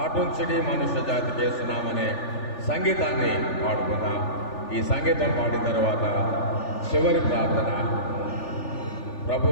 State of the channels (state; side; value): late; right; 3.4 ms